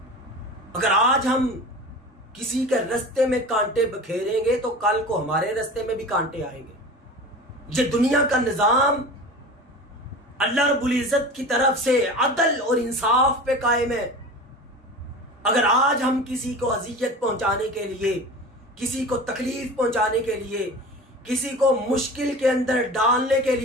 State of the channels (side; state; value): both; normal; correlation 0.34